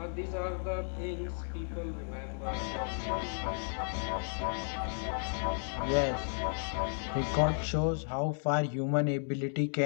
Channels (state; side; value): silent; right; digital silence